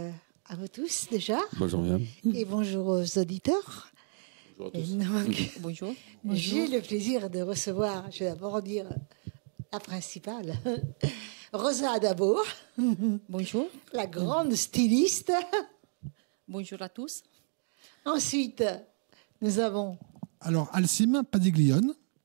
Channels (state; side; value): silent; left; 57 dB below the other